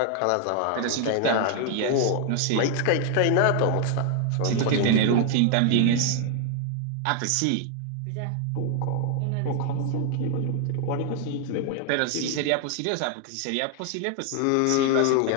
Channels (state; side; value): different; both; correlation 0.00